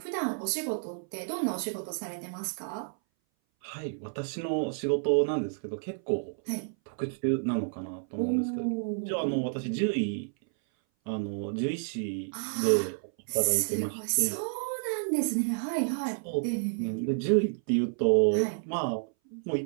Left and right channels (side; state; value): left; silent; 58 dB below the other